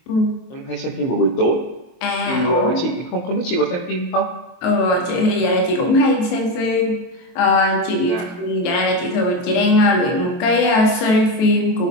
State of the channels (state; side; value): late; right; 23 ms